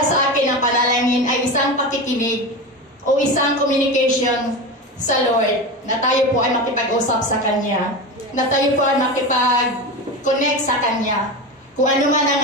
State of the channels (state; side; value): normal; both; correlation 0.23